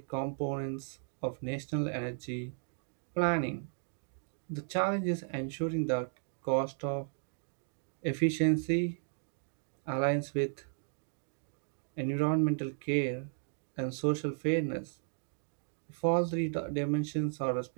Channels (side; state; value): left; silent; digital silence